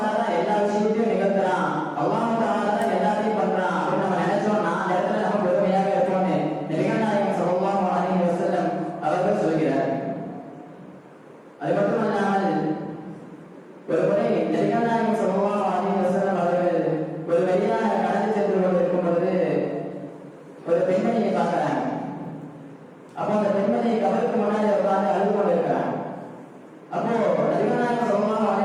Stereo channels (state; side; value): identical; both; correlation 1.00